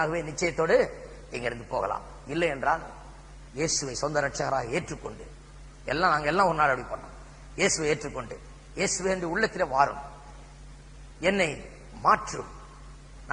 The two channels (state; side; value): identical; both; correlation 1.00